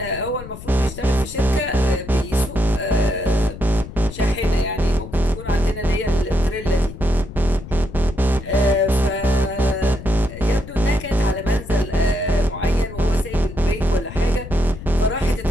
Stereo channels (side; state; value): left; noise; rumble, 13 dB below the sound